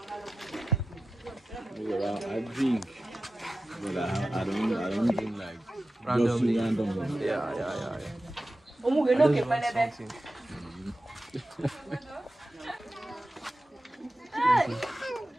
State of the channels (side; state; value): both; normal; correlation 0.93